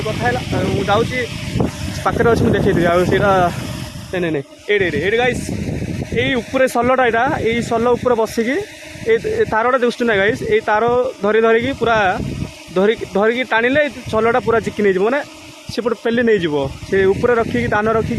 कथा है जाऊँगी पाखे अच्छी मुझे देखी से नहीं ये गाइस ये ऊपर सलटा यहाँ ये सल उपर बसिकी तारटा देखुँ ना गाइस ये तार धरिकी पूरा धरिकी टाणिले सलटा पूरा चिकी नहीं मैंने सेपटे पेली नहीं से ऊपर रखिकी दान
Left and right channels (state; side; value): identical; both; correlation 1.00